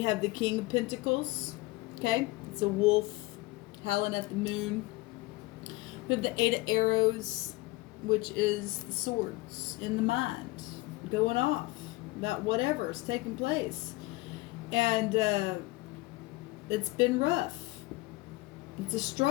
have the King of Pentacles. Okay, it's a wolf howling at the moon. We have the Eight of Arrows, which is the swords in the mind, going off about whatever's taking place. And it's been rough. It's a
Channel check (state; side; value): quieter; right; 21.6 dB